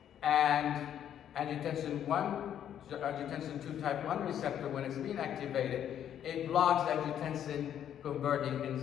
And angiotensin 2 type 1 receptor, when it's being activated, it blocks angiotensin converting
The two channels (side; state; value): right; quieter; 9.9 dB